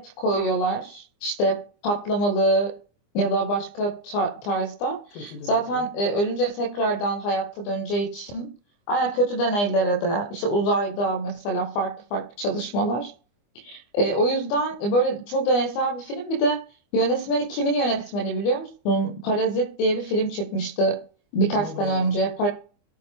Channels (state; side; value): late; right; 25 ms